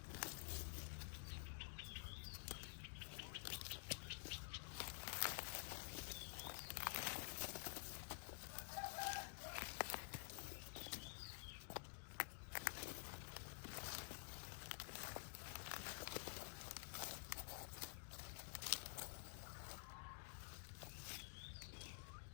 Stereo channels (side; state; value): right; silent; digital silence